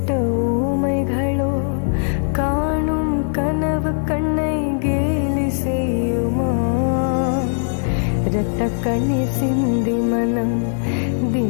ஊமைகளோ காணும் கனவு கண்ணை கேலி செய்யுமா? இரத்த கண்ணீர் சிந்தி மனம்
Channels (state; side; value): silent; right; 66 dB below the other